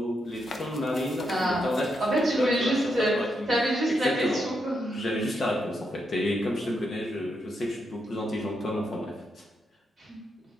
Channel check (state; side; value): normal; both; correlation 0.82